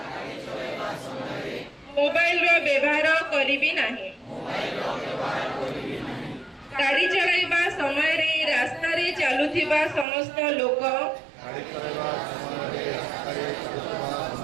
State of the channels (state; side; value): drops out; left; at 10.1 s